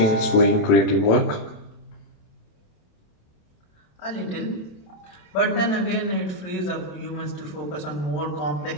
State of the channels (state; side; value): late; right; 28 ms